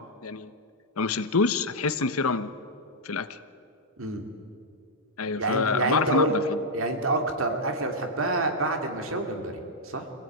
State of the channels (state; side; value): normal; both; correlation -0.04